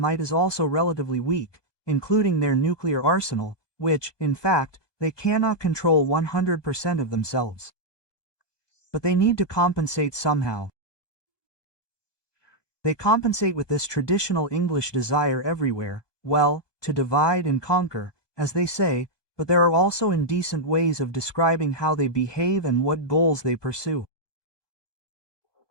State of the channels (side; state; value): right; late; 1.2 ms